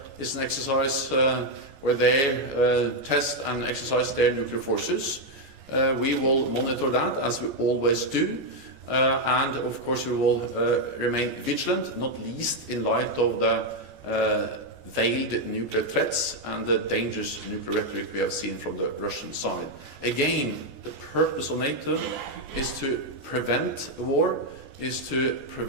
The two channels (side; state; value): left; late; 14 ms